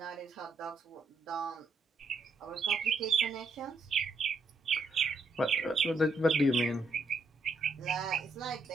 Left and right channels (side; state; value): left; quieter; 3.3 dB